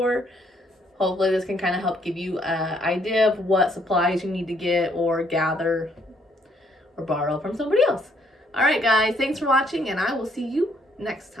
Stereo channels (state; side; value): normal; both; correlation 0.68